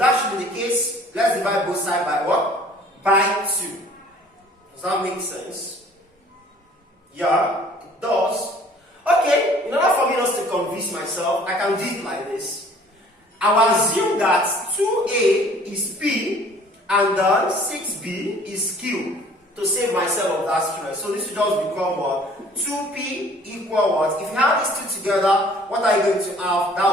should be the case, let's divide both sides by what? By 2. Does that make sense? Yeah, it does. Okay, in order for me not to convince myself, I can do it like this. I will assume that 2a is p and then 6b is q to save myself of that stress. So this will just become what? 2p equal what? If you have these two together, what are you going to have?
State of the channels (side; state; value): both; normal; correlation 0.53